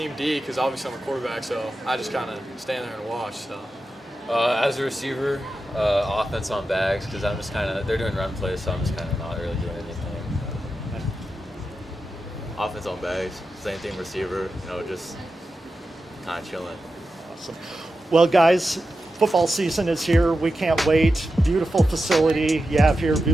D, because obviously I'm a quarterback, so I just kind of stand there and watch. So. As a receiver, offense on bags, because I'm just kind of, they're doing run plays, so I'm just kind of not really doing anything. Offense on bags, same thing receiver, just kind of chilling. Awesome. Well, guys, football season is here. We can't wait. Beautiful facility you have here,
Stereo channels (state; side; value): normal; both; correlation 0.91